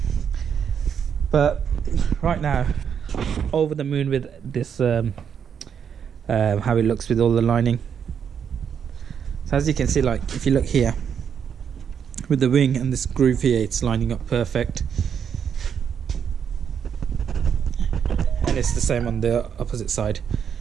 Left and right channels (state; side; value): quieter; left; 7.7 dB